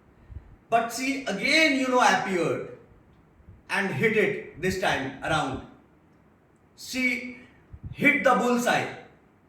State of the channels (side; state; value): both; identical; correlation 1.00